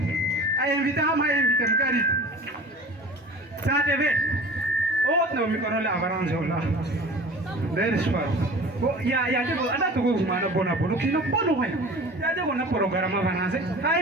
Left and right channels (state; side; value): normal; both; correlation 0.40